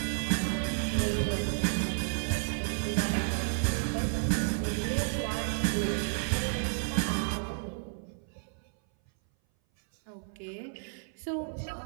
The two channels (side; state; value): left; silent; 57 dB below the other